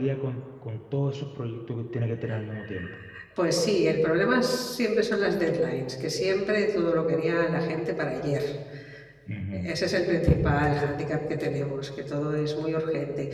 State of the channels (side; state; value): both; identical; correlation 1.00